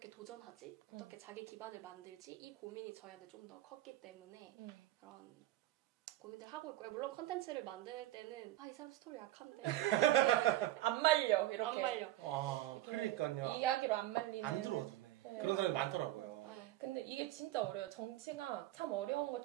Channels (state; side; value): quieter; left; 15.2 dB